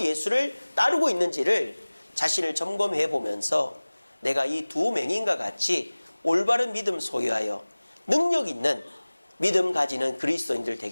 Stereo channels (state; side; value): inverted; both; correlation -1.00